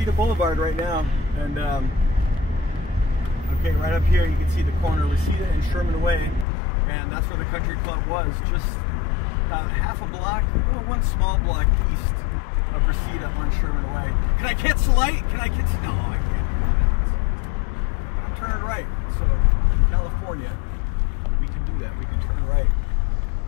Boulevard right now, and okay, right up here you can see the corner of Reseda and Sherman Way, and that's where the country club was, just half a block, well, one small block east of Reseda on Sherman Way. Can I catch the light? Can I catch? No, I can't. I'm turning right, so in California we can do that. We can turn right,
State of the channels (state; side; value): drops out; right; at 6.5 s